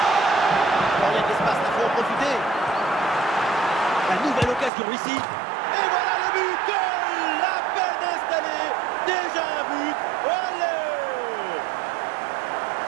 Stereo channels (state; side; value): drops out; left; at 4.7 s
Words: Il y a de l'espace, il faut en profiter. La nouvelle occasion ici. Et voilà le but! Goal! À peine installé. Déjà un but. Olé!